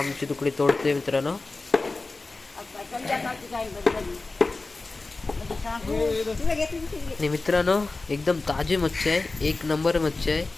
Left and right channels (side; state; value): right; quieter; 3.5 dB